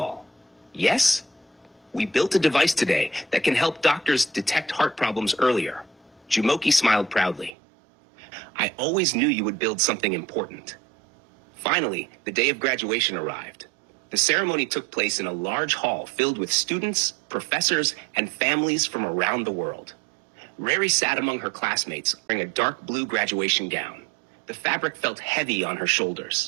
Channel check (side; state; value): left; drops out; at 7.5 s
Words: "Yes?" "We built a device today that can help doctors detect heart problems earlier." Jumoki smiled proudly. "I always knew you would build something important." Finally, the day of graduation arrived. The ceremony took place in a large hall filled with students, professors, and families from around the world. Rary sat among her classmates wearing a dark blue graduation gown. The fabric felt heavy on her